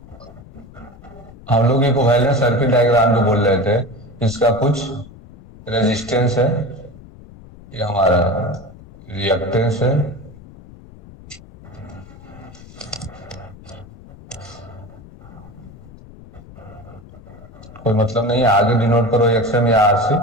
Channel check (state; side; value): noise; left; rumble, 20 dB below the sound